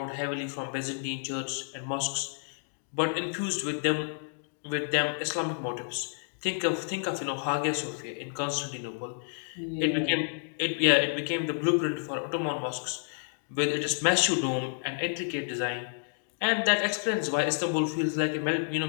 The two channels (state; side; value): silent; right; digital silence